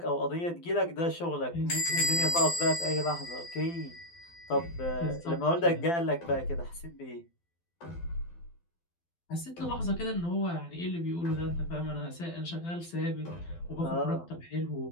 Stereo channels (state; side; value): late; right; 12 ms